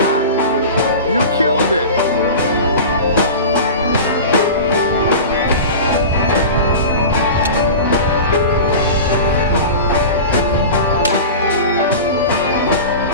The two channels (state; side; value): inverted; both; correlation -0.32